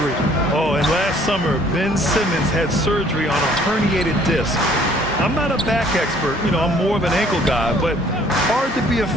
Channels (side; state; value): both; normal; correlation 0.58